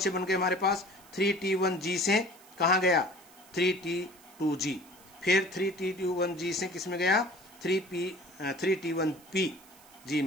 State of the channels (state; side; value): noise; right; hiss, 24 dB below the sound